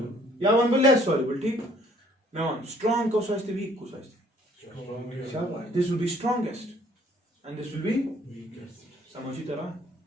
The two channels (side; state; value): both; normal; correlation 0.60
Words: या वन बो लेस सॉल्युबल, ठीक। मैं वन स्ट्रांग को सोचते वीक को सोचते, शाबाश, this will be strongest and this will be समझी तरह